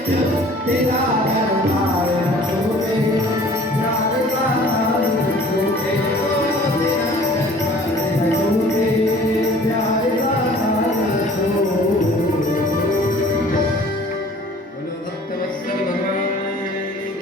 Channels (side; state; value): both; normal; correlation 0.50